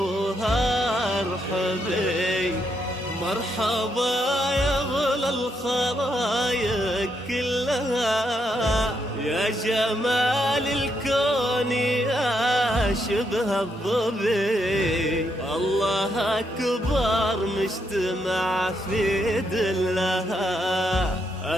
ارحبي، مرحبا يا غلا الخرايق كلها، يا جمال الكون يا شبه الظبي، الله أكبر مجتمع في دلها،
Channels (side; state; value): both; normal; correlation 0.78